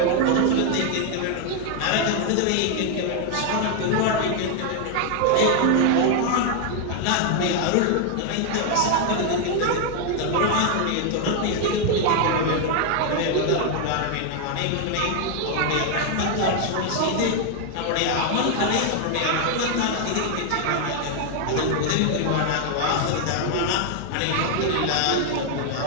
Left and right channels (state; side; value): different; both; correlation 0.00